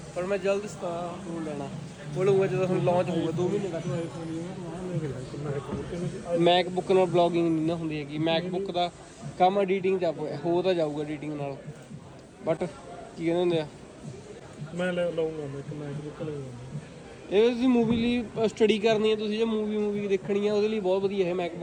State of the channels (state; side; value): identical; both; correlation 1.00